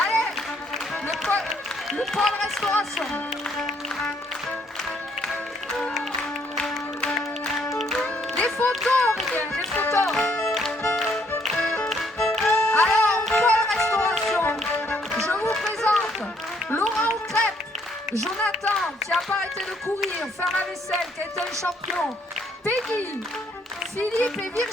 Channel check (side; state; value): both; normal; correlation 0.68